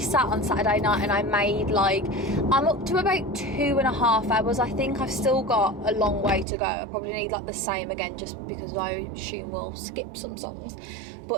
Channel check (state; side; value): drops out; left; at 6.5 s